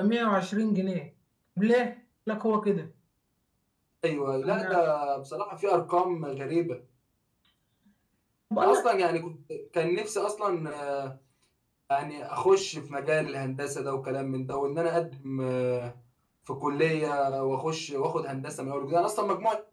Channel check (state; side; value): identical; both; correlation 1.00